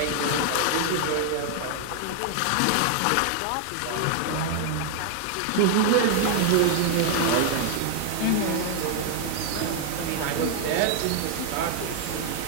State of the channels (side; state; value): both; different; correlation 0.00